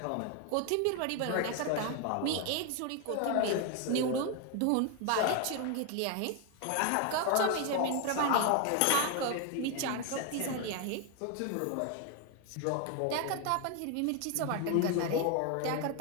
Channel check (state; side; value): different; both; correlation 0.01